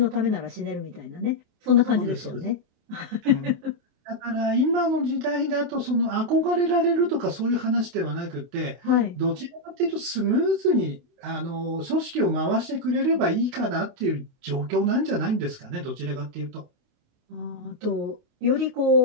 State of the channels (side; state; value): left; late; 28 ms